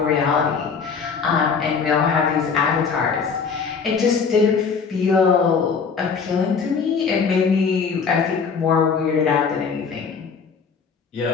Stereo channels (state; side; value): quieter; right; 5.7 dB